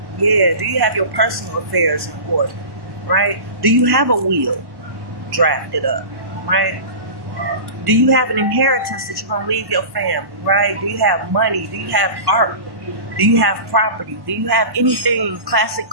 Yeah, do you have your personal affairs in order, right? Do you have a will drafted up, right? Do you have an inheritance that you're going to leave your family, right? Do you have money? Do you have art? Do you have property? Do you have anything, classic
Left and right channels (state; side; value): late; left; 1.1 ms